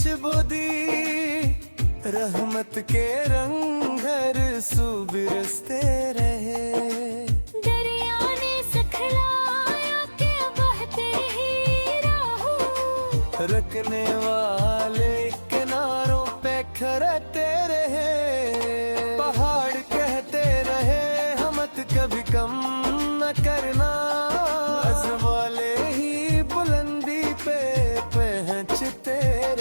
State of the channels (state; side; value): inverted; both; correlation -1.00